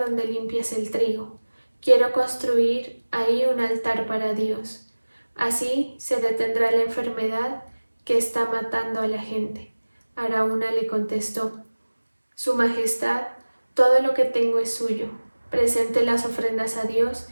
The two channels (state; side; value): inverted; both; correlation -1.00